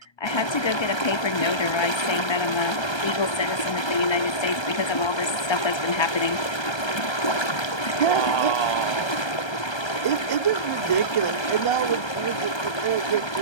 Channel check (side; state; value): right; late; 1.3 ms